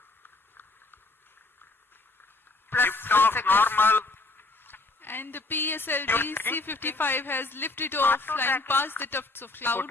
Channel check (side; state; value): right; quieter; 3.2 dB